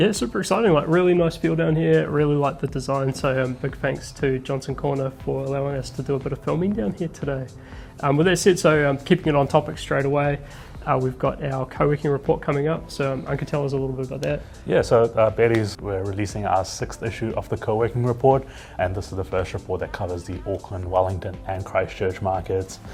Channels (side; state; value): both; identical; correlation 1.00